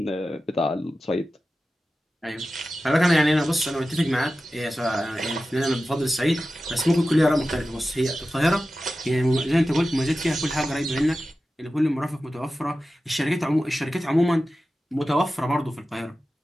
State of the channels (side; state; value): both; normal; correlation 0.94